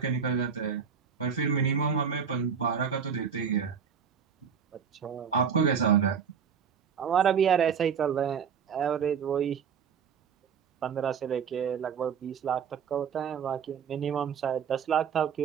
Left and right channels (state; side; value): quieter; left; 7.0 dB